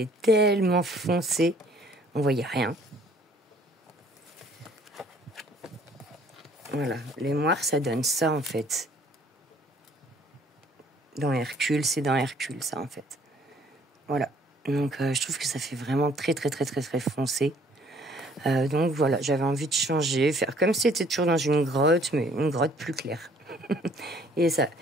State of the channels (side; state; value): both; normal; correlation 0.59